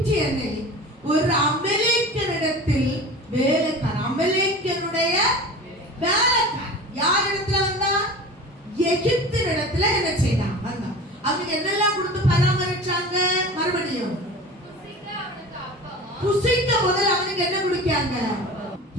ஒரு அமலேக்கியனிடத்தில் வேலைக்காரன், அமலேக்கியனுடைய வேலைக்காரன் யார் இடத்துல வந்தா? எகிப்தினிடத்துல என்ன செய்தான்? வந்தான். அவனுக்கு என்னெல்லாம் கொடுத்து பராமரிச்சாங்க? மறுபடியும் புசிக்க முதல்ல அவனுக்கு என்ன கொடுக்காங்க?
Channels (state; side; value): normal; both; correlation 0.36